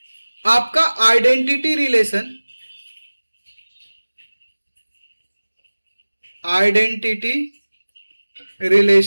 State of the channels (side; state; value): both; inverted; correlation -1.00